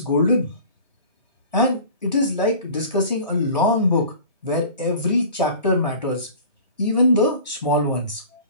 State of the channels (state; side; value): inverted; both; correlation -0.42